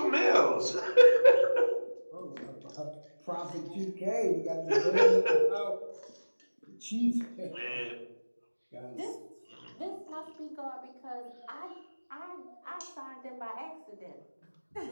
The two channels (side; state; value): both; inverted; correlation -1.00